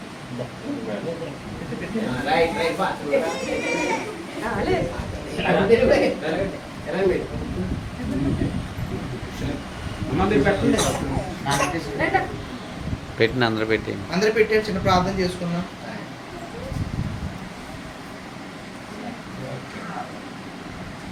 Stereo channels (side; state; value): both; identical; correlation 1.00